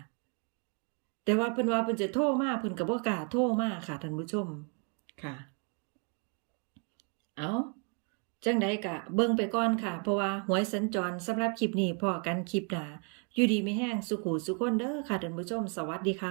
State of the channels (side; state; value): left; quieter; 38.5 dB